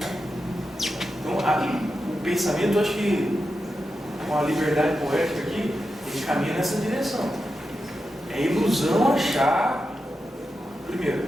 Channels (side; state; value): both; normal; correlation 0.89